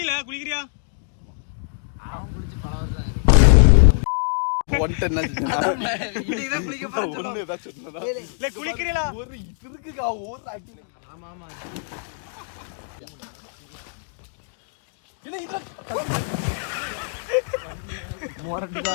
குளிக்கிறியா? அவன் குளிச்சு பல வருஷம் ஆயிரும். குளிக்கிறீங்களா? ஆமா ஆமா மொரட்டு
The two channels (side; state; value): right; silent; digital silence